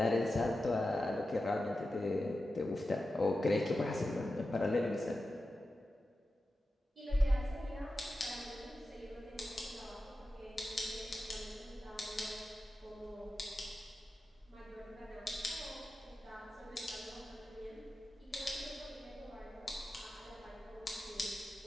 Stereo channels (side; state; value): both; normal; correlation 0.92